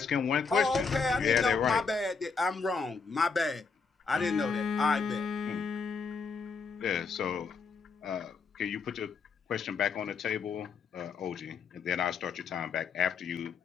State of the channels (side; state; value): right; quieter; 5.1 dB